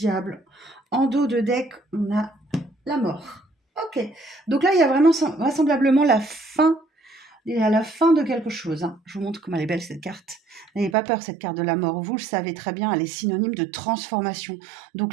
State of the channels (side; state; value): left; drops out; at 11.0 s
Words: En dos de deck, on a la mort. Ok. Donc là, il y a vraiment vraisemblablement la fin. Il est à la fin de quelque chose. Je vous montre comment elle est belle cette carte. N'ayez pas peur, cette carte de la mort. Vous le savez très bien, elle est synonyme de transformation.